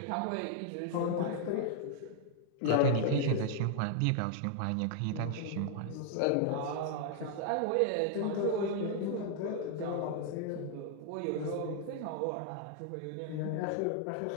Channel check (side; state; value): both; different; correlation -0.01